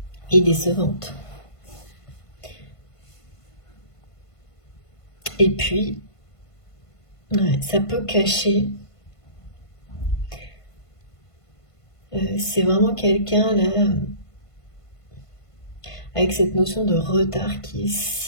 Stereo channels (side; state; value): right; late; 1.5 ms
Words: est décevante. Et puis, ouais, ça peut cacher. C'est vraiment quelqu'un là, avec cette notion de retard qui est